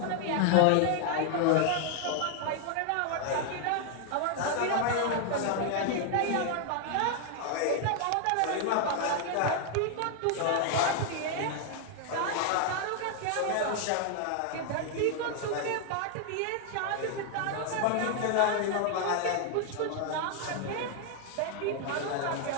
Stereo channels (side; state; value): both; different; correlation 0.00